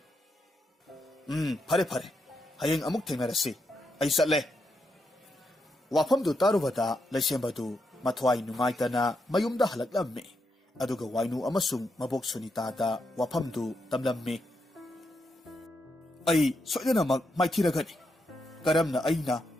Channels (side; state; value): both; normal; correlation 0.82